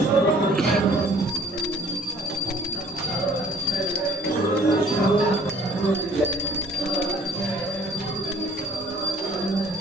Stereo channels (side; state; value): both; normal; correlation 0.55